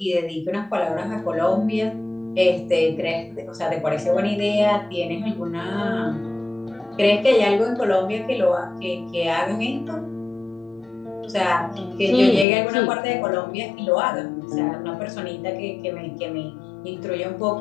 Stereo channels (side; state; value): right; drops out; at 12.5 s